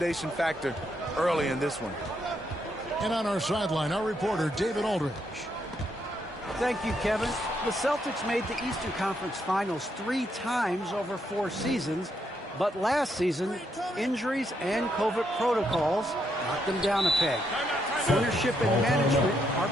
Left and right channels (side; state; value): both; normal; correlation 0.77